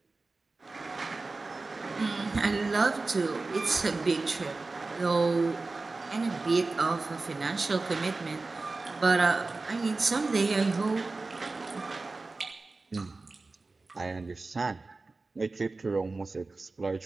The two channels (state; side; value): quieter; left; 3.6 dB